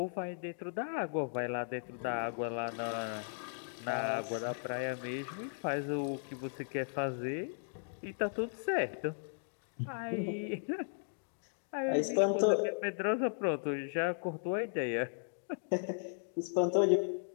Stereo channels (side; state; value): right; silent; digital silence